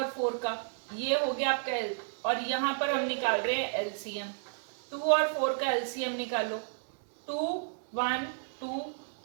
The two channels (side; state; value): left; silent; digital silence